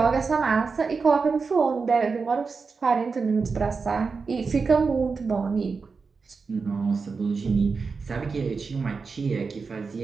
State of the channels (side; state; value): left; quieter; 4.8 dB